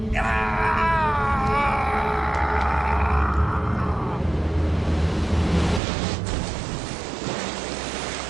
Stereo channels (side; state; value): left; drops out; at 5.8 s